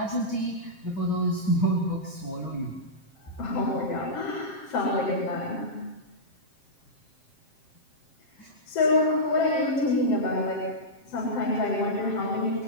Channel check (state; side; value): late; right; 7.5 ms